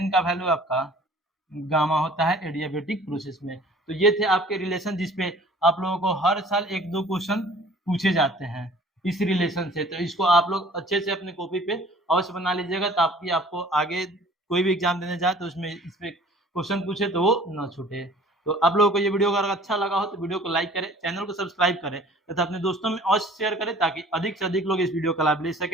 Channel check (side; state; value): both; normal; correlation 0.50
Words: का वैल्यू आपका गामा होता है एडियाबेटिक प्रोसेस में। तो ये थे आपके रिलेशन जिसपे आप लोगों को हर साल 1-2 क्वेश्चन पूछे जाते हैं इस रिलेशन से। तो इसको आप लोग अच्छे से अपने कॉपी पे अवश्य बना लीजिएगा, ताकि आपको आगे कोई भी एग्जाम देने जाए तो उसमें इस पे क्वेश्चन पूछे तो वो न छूटे। तो आप लोगों को ये वीडियो अगर अच्छा लगा हो तो वीडियो को लाइक करें, चैनल को सब्सक्राइब करें तथा अपने दोस्तों में और शेयर करें ताकि अधिक से अधिक लोग इस वीडियो का लाभ ले